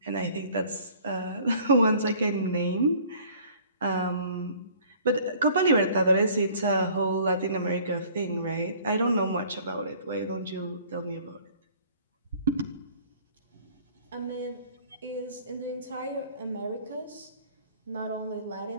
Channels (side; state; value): both; inverted; correlation -0.53